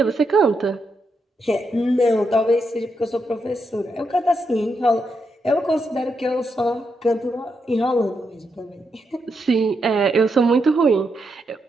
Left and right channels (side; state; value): both; normal; correlation 0.82